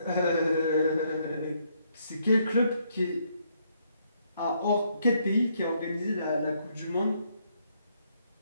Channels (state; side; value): inverted; both; correlation -0.72